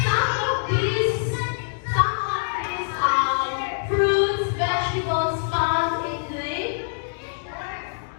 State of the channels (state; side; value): silent; right; digital silence